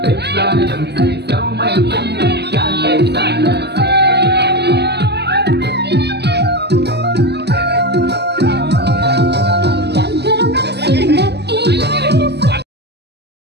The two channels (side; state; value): left; late; 0.49 ms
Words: xa đầm say dấu mây cũng ngàn cây xa